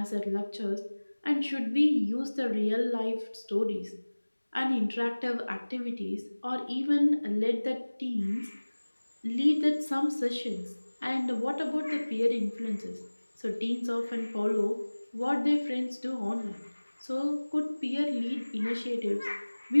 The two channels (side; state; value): both; inverted; correlation -1.00